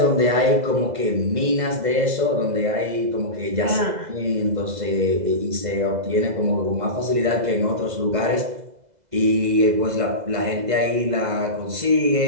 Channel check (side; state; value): left; late; 2.0 ms